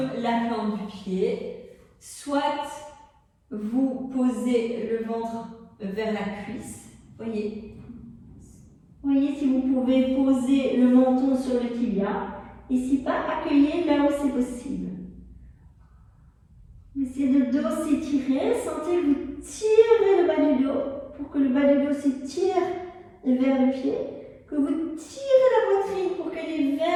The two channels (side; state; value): both; identical; correlation 1.00